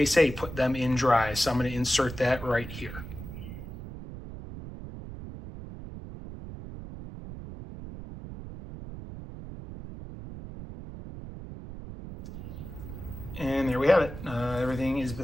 say put them in dry. So I'm going to insert that right here. And there we have it. Everything is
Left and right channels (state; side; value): noise; right; rumble, 11 dB below the sound